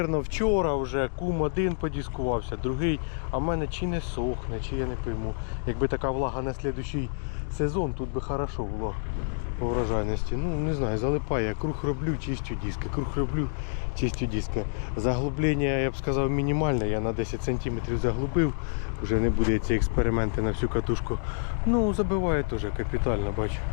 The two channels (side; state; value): right; silent; digital silence